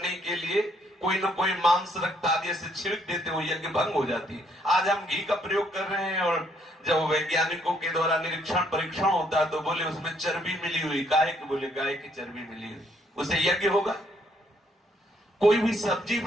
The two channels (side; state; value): both; normal; correlation 0.69